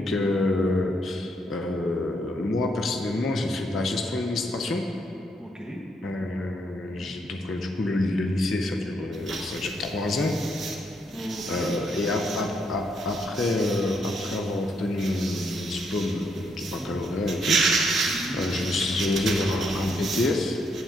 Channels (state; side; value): normal; both; correlation 0.75